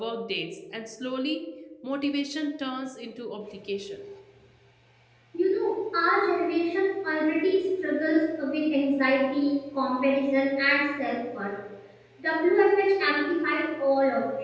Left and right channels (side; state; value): both; identical; correlation 1.00